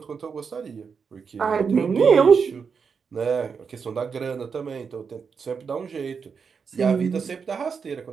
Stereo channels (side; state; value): left; quieter; 5.9 dB